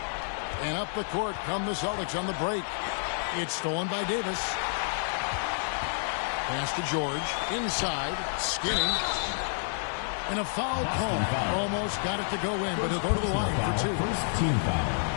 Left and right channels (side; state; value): right; silent; digital silence